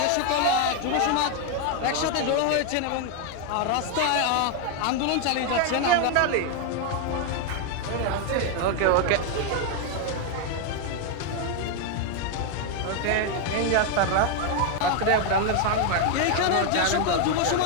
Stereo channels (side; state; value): both; different; correlation 0.01